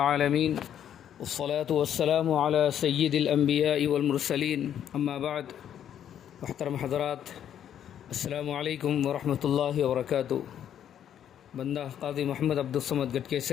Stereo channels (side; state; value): right; quieter; 9.8 dB